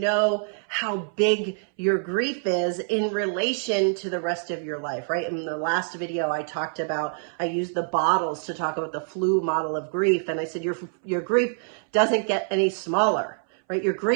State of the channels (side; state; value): left; silent; 61 dB below the other